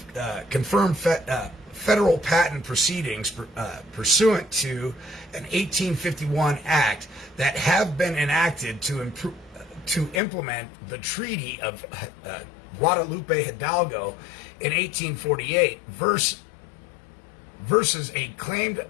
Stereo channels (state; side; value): drops out; right; at 10.2 s